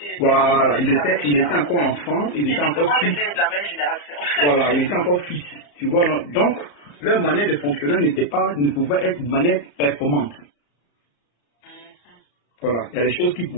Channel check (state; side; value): late; right; 34 ms